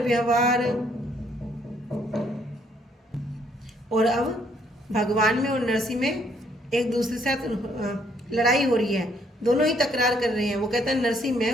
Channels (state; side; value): normal; both; correlation 0.68